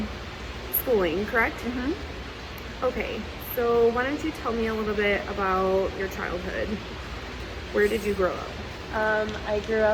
schooling, correct? Mm-hmm. Okay, so why don't you tell me a little bit about your childhood? Where did you grow up? I grew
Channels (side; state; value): both; identical; correlation 1.00